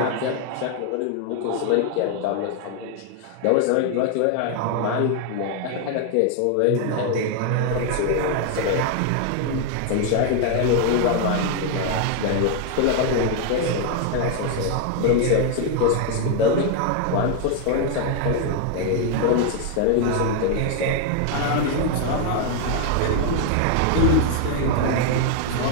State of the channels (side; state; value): both; different; correlation 0.00